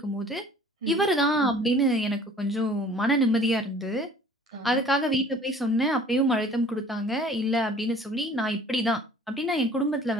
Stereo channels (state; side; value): normal; both; correlation 0.50